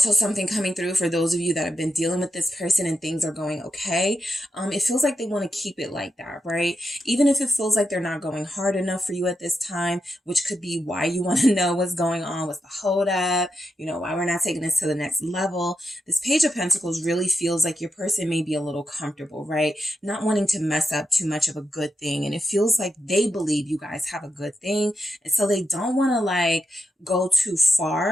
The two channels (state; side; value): normal; both; correlation 0.87